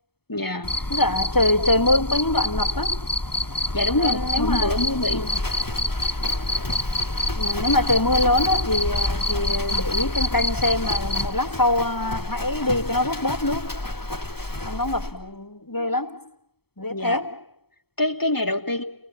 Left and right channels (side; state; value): right; late; 0.96 ms